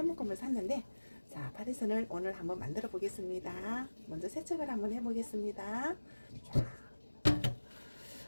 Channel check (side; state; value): both; inverted; correlation -1.00